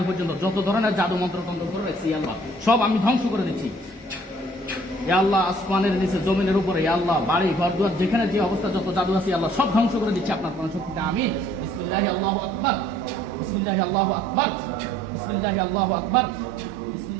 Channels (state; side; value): normal; both; correlation 0.58